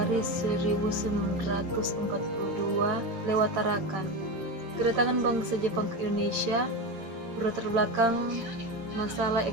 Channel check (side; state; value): left; late; 8.9 ms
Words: 1942 lewat Tarakan. Kedatangan bangsa Jepang ke Indonesia berlatar belakang masalah